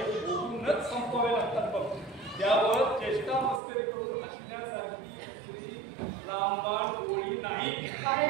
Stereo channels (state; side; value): drops out; left; at 3.6 s